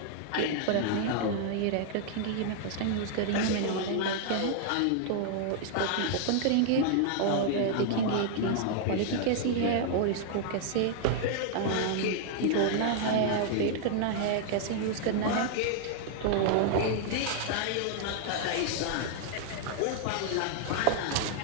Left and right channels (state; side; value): different; both; correlation -0.01